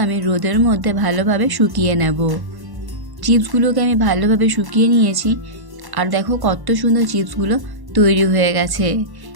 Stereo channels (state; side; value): late; left; 1.1 ms